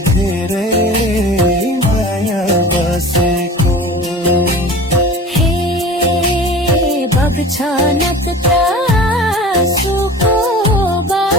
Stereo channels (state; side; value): normal; both; correlation 0.39